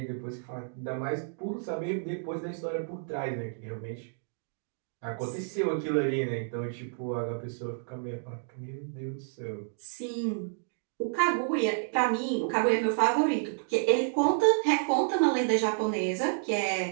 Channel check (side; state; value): left; silent; digital silence